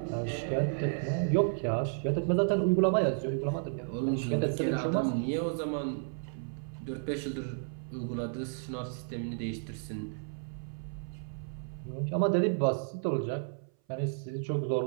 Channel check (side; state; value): left; silent; 56 dB below the other